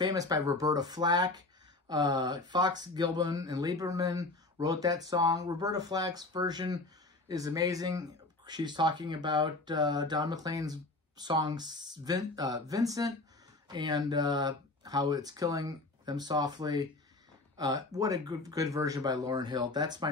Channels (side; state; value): right; quieter; 3.1 dB